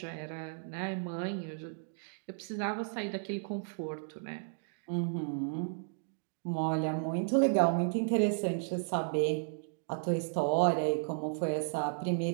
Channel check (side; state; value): left; silent; digital silence